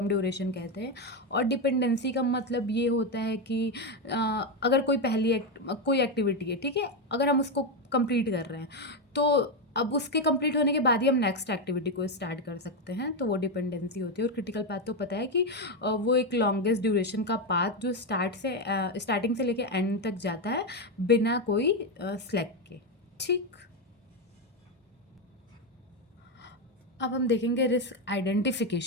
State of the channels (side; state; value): both; normal; correlation 0.08